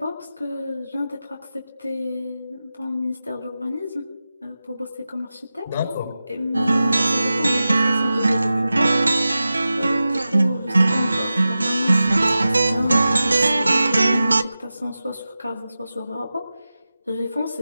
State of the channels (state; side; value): inverted; both; correlation -0.94